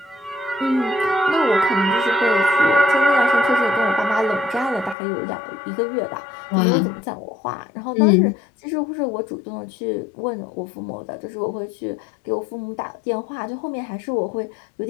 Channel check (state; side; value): drops out; right; at 5.0 s